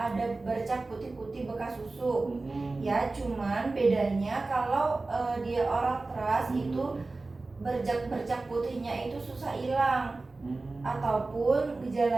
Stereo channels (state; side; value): quieter; left; 3.4 dB